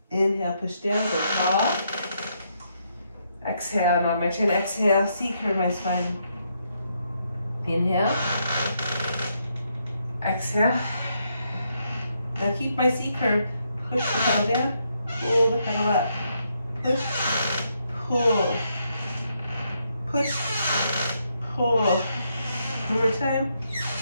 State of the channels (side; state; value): both; inverted; correlation -0.77